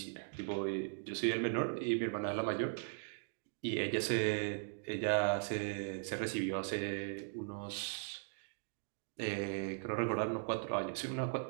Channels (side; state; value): left; silent; digital silence